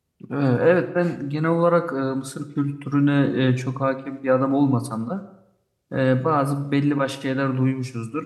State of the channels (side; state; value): both; identical; correlation 1.00